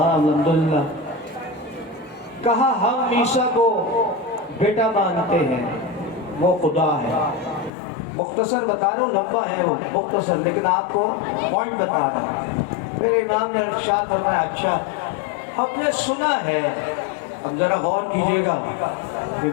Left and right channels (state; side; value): drops out; right; at 7.7 s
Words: الحمدللہ۔ کہا ہم عیسیٰ کو بیٹا مانتے ہیں، وہ خدا ہے۔ مختصر بتا رہا ہوں، لمبا ہے وہ مختصر، لیکن آپ کو پوائنٹ بتا رہا ہوں۔ میرے امام نے ارشاد فرمایا اچھا ہم نے سنا ہے، اب ذرا غور کیجیے گا